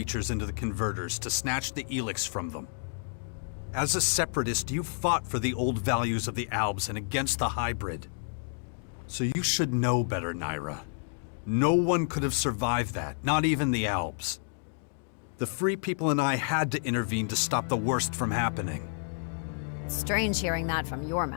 into the converters to snatch the Elex from them. As a separatist, you fought for the old values of the Albs and against the hybrid. So you should know better, Naira. No one could have survived that, not even the Albs. The Free People and I had to intervene to stop the worst from happening. strange hearing that from your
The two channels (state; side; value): silent; right; digital silence